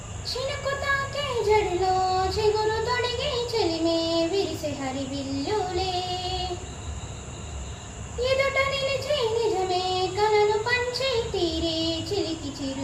చినుకు తాకే జడిలో చిగురు తొడిగి చెలిమే విరిసే హరివిల్లులే ఎదుట నిలిచి నిజమే కలను పంచి తీరే చిలికి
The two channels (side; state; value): both; identical; correlation 1.00